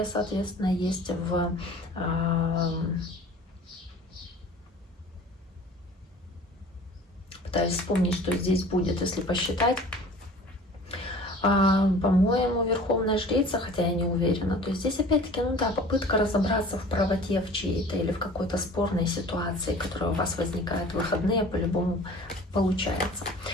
соответственно, есть в... Пытаюсь вспомнить, что здесь будет, если посчитать. По-моему, Верховная Жрица, хотя я не уверена. То есть здесь опять-таки, ну да, попытка разобраться в правоте в чьей-то или в какой-то спорной ситуации, которая у вас возникает в выходные, по-любому получается.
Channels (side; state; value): both; normal; correlation 0.45